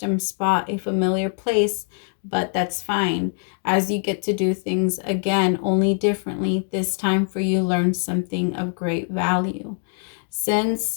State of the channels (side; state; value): right; silent; 63 dB below the other